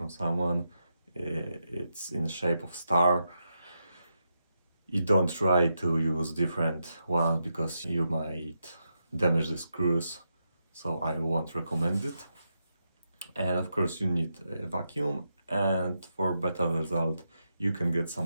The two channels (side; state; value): both; inverted; correlation -0.85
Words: someone. It's in the shape of star. You don't try to use different ones because you might damage the screws, so I won't recommend it. And of course you need a vacuum, and for better result you can get